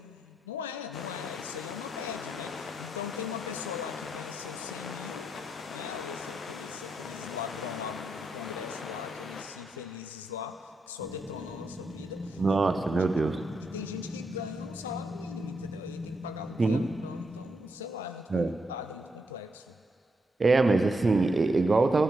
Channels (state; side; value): normal; both; correlation 0.80